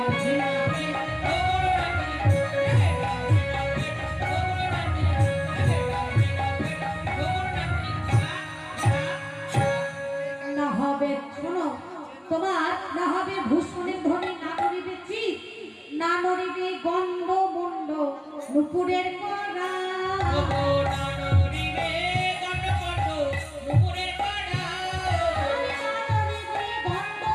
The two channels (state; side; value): identical; both; correlation 1.00